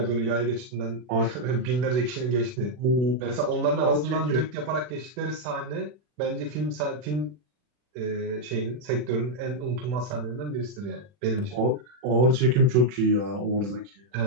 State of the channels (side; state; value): left; late; 40 ms